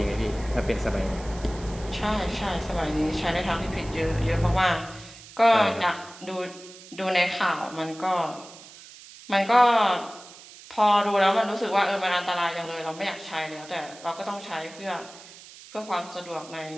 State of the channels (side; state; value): right; noise; hiss, 18 dB below the sound